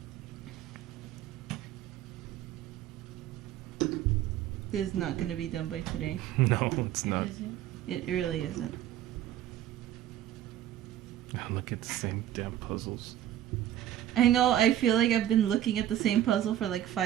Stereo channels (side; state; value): left; quieter; 12.0 dB